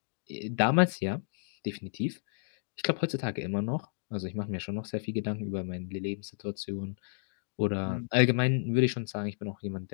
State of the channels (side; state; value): right; silent; digital silence